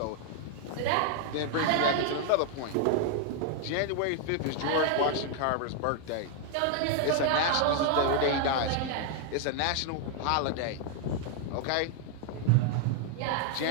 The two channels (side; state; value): both; different; correlation 0.00